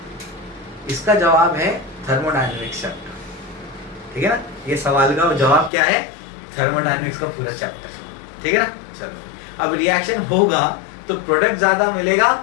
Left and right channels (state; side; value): drops out; right; at 5.7 s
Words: इसका जवाब है थर्मोडायनेमिक्स चैप्टर, ठीक है ना। ये सवाल का जवाब क्या है, थर्मोडायनेमिक्स का पूरा चैप्टर, ठीक है ना। चलो, अब रिएक्शन होगा तो प्रोडक्ट ज्यादा मिलेगा